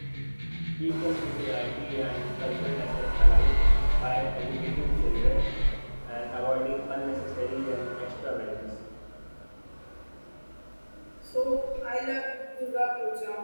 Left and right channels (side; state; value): both; inverted; correlation -1.00